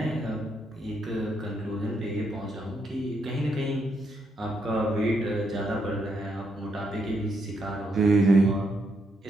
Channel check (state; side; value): normal; both; correlation 0.78